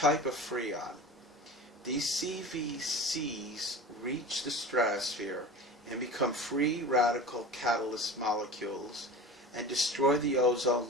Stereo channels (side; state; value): both; normal; correlation 0.33